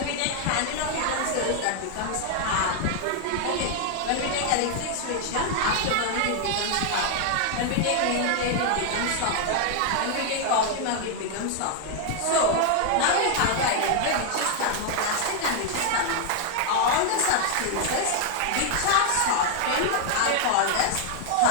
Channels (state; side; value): different; both; correlation 0.00